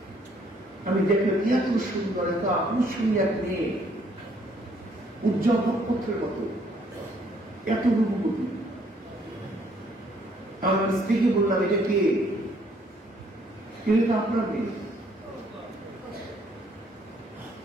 আমি দেখলাম এত সুন্দর, এত আকর্ষণীয় এক মেয়ে, উজ্জ্বল নক্ষত্রের মতো, এত রূপবতী। আমার স্ত্রীকে বললাম, এটা কে? এটা আপনার মেয়ে।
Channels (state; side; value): normal; both; correlation 0.65